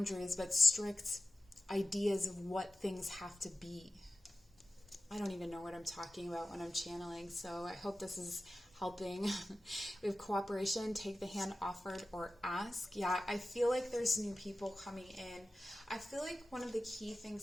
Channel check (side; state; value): both; normal; correlation 0.94